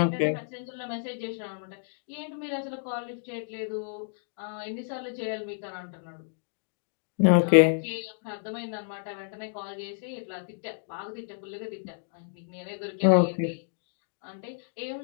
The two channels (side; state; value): right; silent; digital silence